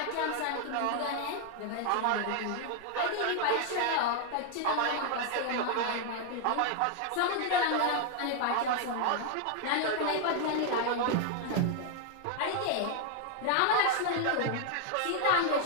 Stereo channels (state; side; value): different; both; correlation 0.00